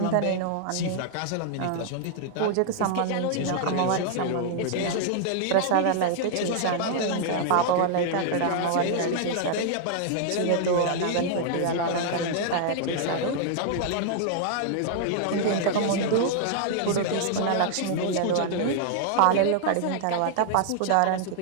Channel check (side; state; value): both; different; correlation -0.01